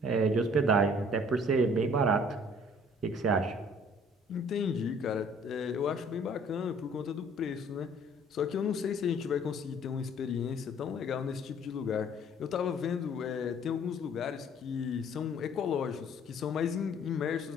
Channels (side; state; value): both; normal; correlation 0.55